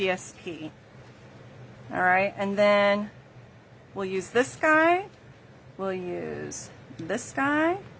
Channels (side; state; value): both; identical; correlation 1.00